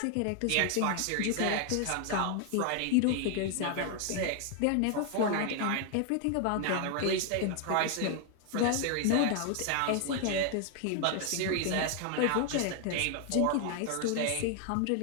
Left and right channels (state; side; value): different; both; correlation 0.00